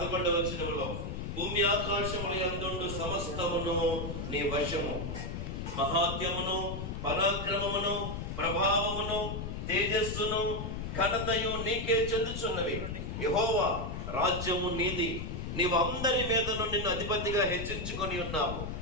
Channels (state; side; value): noise; left; rumble, 5 dB below the sound